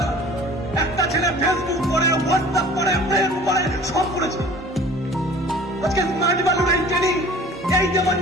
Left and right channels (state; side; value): normal; both; correlation 0.46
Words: একটা ছেলে ফেসবুক করে, হোয়াটসঅ্যাপ করে, প্রেম করে, সব করেছে। আজকে স্মার্ট বালুর এই ট্রেনিং, এই